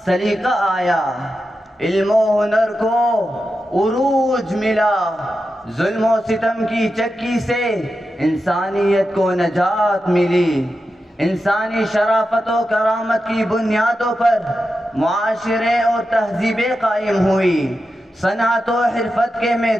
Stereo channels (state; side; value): normal; both; correlation 0.90